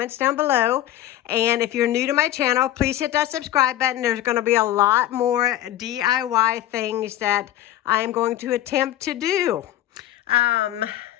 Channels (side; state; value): right; quieter; 13.3 dB